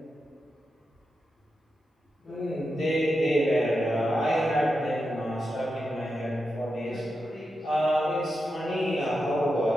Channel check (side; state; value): both; normal; correlation 0.88